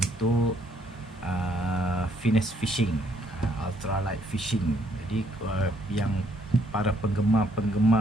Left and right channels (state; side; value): normal; both; correlation 0.68